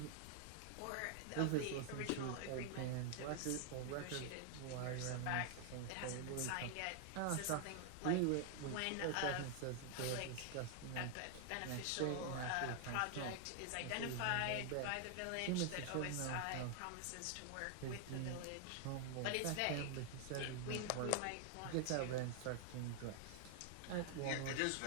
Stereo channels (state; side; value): different; both; correlation 0.00